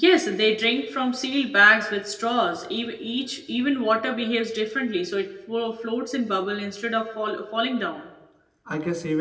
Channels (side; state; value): both; identical; correlation 1.00